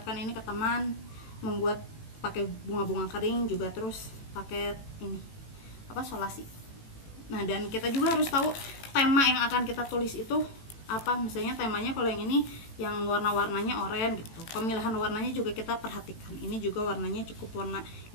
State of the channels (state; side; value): late; right; 18 ms